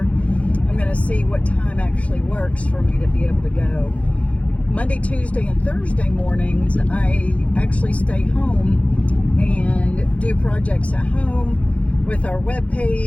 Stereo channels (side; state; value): right; late; 0.064 ms